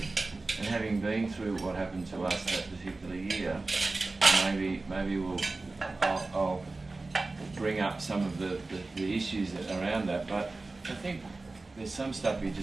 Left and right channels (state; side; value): quieter; left; 3.4 dB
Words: and having been through what happened to us that particular year, maybe I'll bring up some of the issues around that. But I think there's some stuff you